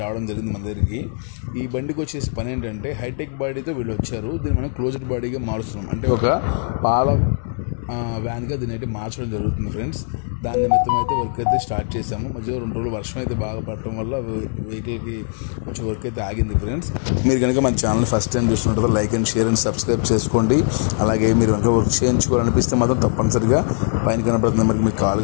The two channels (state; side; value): silent; right; 65 dB below the other